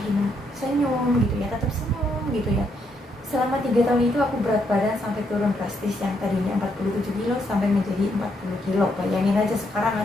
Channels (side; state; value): both; normal; correlation 0.76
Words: senyum gitu ya, tetap senyum gitu ya. Selama 3 tahun itu aku berat badan sampai turun drastis, yang tadinya 47 kilo sampai menjadi 40 kilo. Bayangin aja sekarang